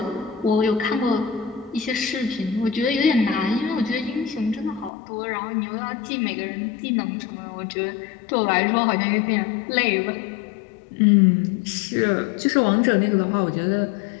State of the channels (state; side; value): drops out; right; at 4.9 s